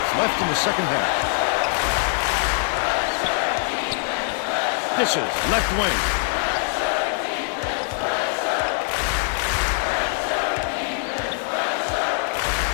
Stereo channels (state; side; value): silent; right; 56 dB below the other